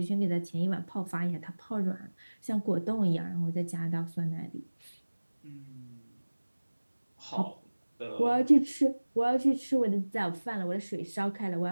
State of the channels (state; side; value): inverted; both; correlation -1.00